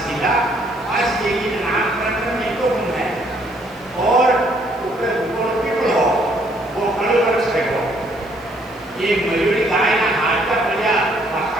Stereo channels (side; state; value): right; noise; hiss, 29 dB below the sound